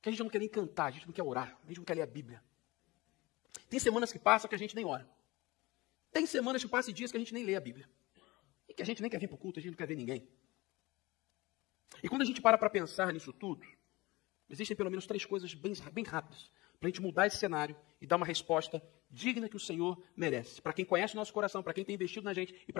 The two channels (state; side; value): quieter; right; 21.7 dB